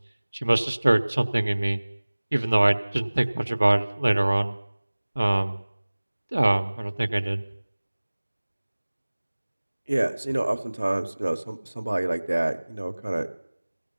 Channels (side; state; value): both; inverted; correlation -1.00